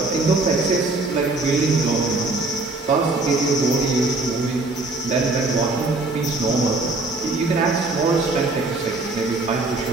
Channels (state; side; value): quieter; left; 3.3 dB